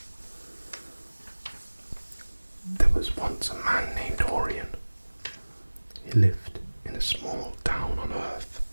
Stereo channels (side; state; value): both; inverted; correlation -1.00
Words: There was once a man named Orian. He lived in a small town on Earth,